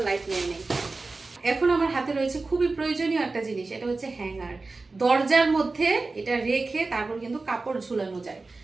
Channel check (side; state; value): left; quieter; 3.7 dB